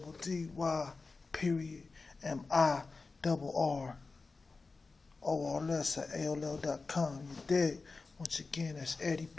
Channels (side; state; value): right; quieter; 4.0 dB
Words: period MIRRORLS at AOL.com. You dig? Once again, that's Eddie